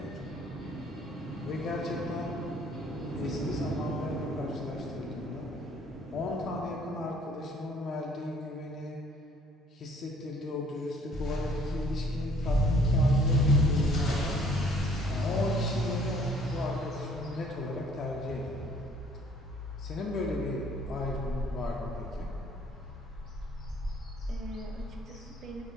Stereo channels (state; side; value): normal; both; correlation 0.59